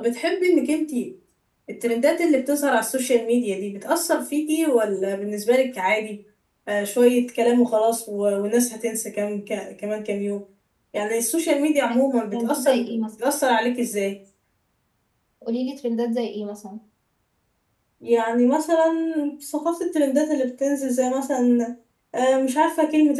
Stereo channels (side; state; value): both; identical; correlation 1.00